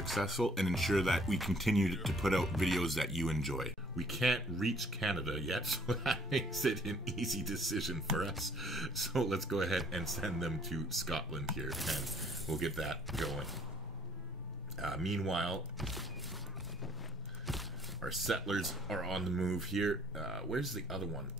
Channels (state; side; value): normal; both; correlation 0.60